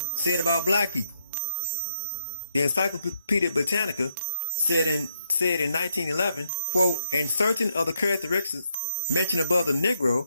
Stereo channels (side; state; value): both; inverted; correlation -0.80